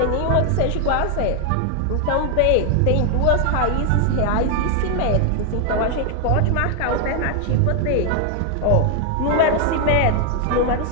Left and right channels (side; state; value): both; different; correlation 0.00